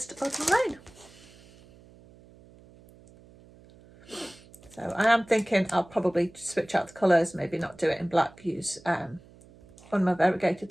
Autumn Rain. So I am thinking I'll probably switch out the colours, maybe not do it in black, use one of my variegated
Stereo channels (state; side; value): noise; right; hum, 24 dB below the sound